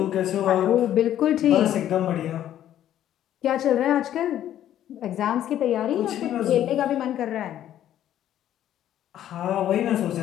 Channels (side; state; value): right; quieter; 11.5 dB